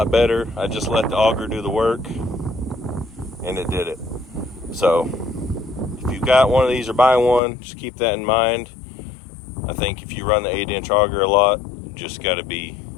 better. I just let the auger do the work, and it did it. So if you've got one of these or buy one, just keep that in mind. I think if you run the 8-inch auger a lot, you just got to be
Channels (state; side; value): drops out; right; at 7.4 s